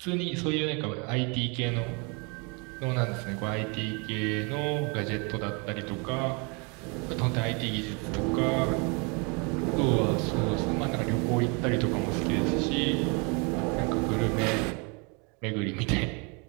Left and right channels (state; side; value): quieter; left; 32.3 dB